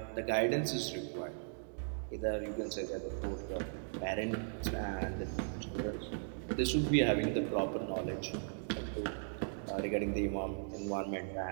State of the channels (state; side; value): silent; left; digital silence